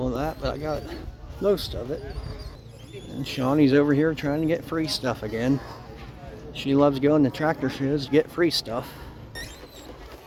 of that, but I got most of it. And Shawnee's over here trying to get free stuff again. She loves going to tractor shows to get free stuff.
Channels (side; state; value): both; identical; correlation 1.00